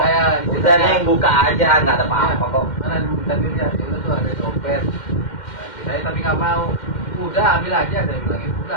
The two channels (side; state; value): right; late; 2.1 ms